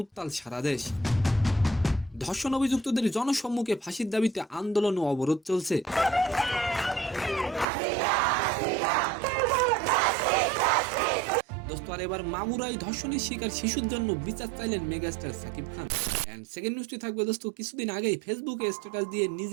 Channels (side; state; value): left; drops out; at 7.7 s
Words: উত্তাল সারা দেশ। ধর্ষণ অভিযুক্তদের জনসম্মুখে ফাঁসির দাবিতে আন্দোলন ও অবরোধ চলছে। দোস্ত আর এবার মাগুরায় ধর্ষণের শিকার শিশুর জন্য বিচার চাইলেন megastar Shakib Khan. And second নিউজটি থাকবে দোস্ত, কিছুদিন আগেই ফেসবুকে স্ট্যাটাস দিয়ে